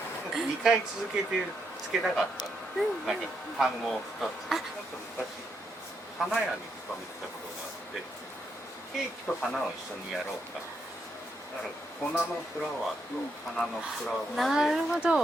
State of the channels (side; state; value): both; normal; correlation 0.79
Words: 2回続けてつけたかったの、なんか単語を2つ。なんか昔花屋に勤めてたことがあって、ケーキと花を一緒にやろうか、だから粉のフラワーと花のフラワーで、なるほ